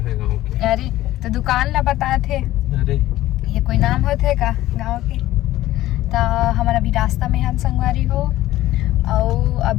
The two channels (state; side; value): quieter; right; 15.3 dB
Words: है गांव के। अरे तो दुकान ला बताए थे, अरे ये कोई नाम होते का गांव के? तो हमारा अभी रास्ता में हन संगवारी हो और